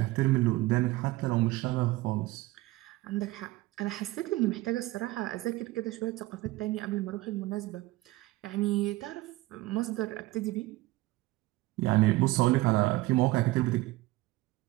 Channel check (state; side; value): quieter; left; 18.9 dB